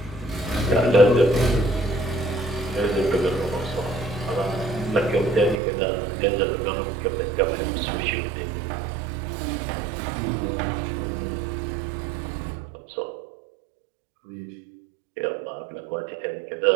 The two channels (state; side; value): drops out; left; at 5.6 s